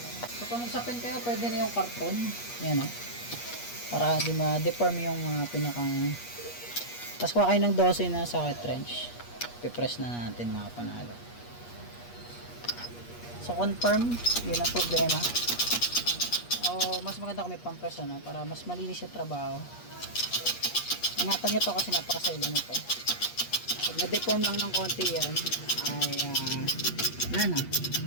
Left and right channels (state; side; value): late; right; 8.4 ms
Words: So, kung magsapin kayo, pwede na yung karton. Yan, no? Para hindi ma-deform yung pinakang. Tapos kuha kayo ng 12 na socket wrench. Pipress na natin mga panalo. So confirm, yun ang problema. O mas maganda kung may pampress, ano, para mas malinis yung trabaho. Ingatan nyo to kasi napakasailan nito. Pag na-deform lang ng konti yan, ay wala na.